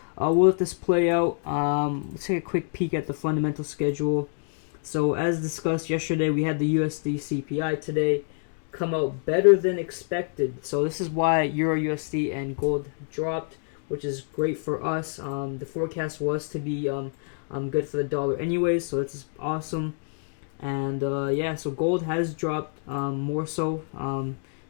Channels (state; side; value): silent; right; 55 dB below the other